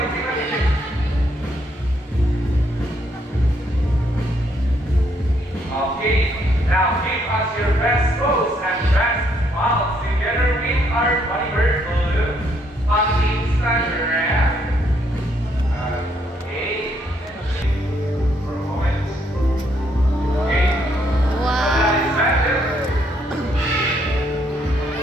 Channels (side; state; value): both; normal; correlation 0.71